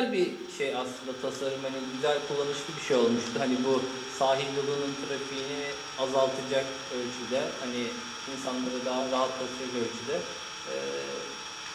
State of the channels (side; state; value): both; identical; correlation 1.00